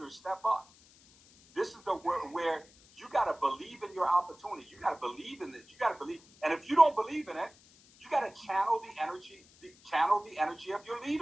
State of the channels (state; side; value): noise; left; hiss, 26 dB below the sound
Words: step up. This is where you got to believe in your opportunity. You got to believe in this. You got to believe. And if you don't believe in it, you got to channel the energy of your